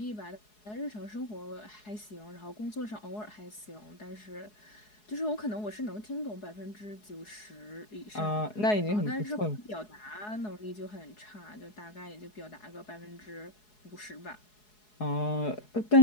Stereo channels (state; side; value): late; right; 4.7 ms